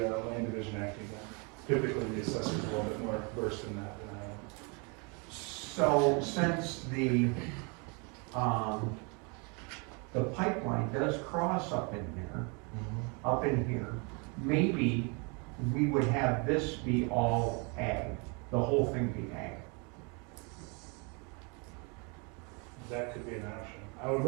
land division act again. Typically, the assessor's a little bit more versed in that than I am. so since the pipeline does cross up in here, maybe we would have this be all ag, the whole thing be ag. That could be an option. I would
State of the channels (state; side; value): quieter; left; 32.6 dB